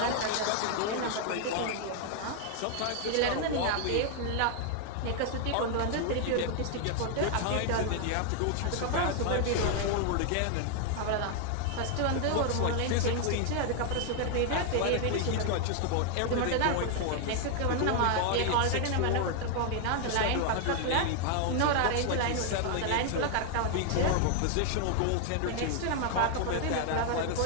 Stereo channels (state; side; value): different; both; correlation 0.00